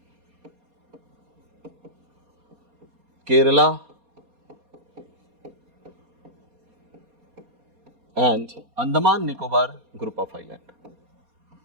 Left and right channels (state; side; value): late; left; 4.2 ms